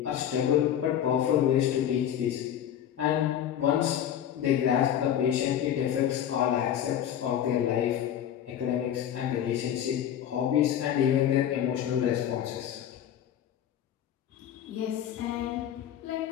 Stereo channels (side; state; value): right; quieter; 10.2 dB